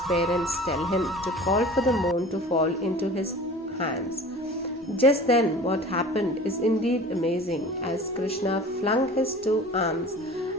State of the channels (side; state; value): both; normal; correlation 0.41